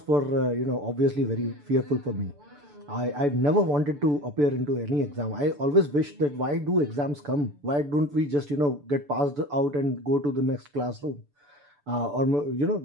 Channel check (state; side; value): late; left; 6.9 ms